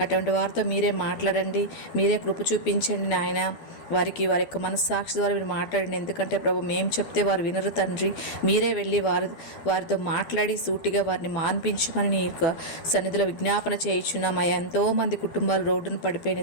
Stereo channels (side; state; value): right; late; 12 ms